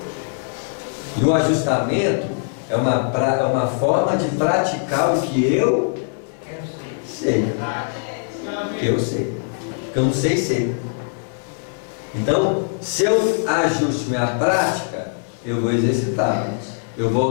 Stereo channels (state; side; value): silent; right; digital silence